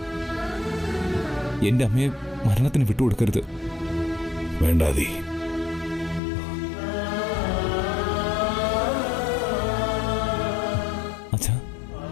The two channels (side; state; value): right; drops out; at 6.2 s